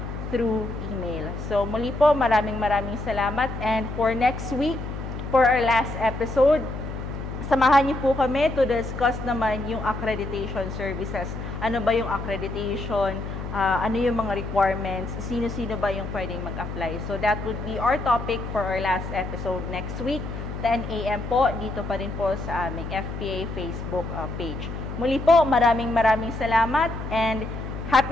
through email. So, muli po, maraming salamat. And for next week, for our last episode, samahan niyo po kami to discuss naman yung accreditation services. Ano ba yung accreditation? Ano yung mga requirements? Sino-sino ba yung pwedeng mag-apply? So that would be our topic for our last episode next week, 10 a.m. po, dito pa rin po sa aming FPA Facebook page. Muli po, maraming salamat and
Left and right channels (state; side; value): noise; left; hum, 7 dB below the sound